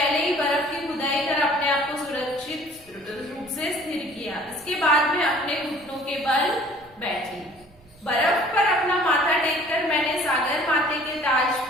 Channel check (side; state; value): right; noise; rumble, 27 dB below the sound